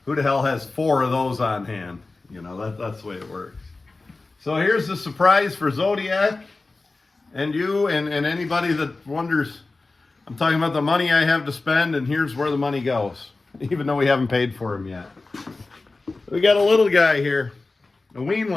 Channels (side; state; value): right; quieter; 3.5 dB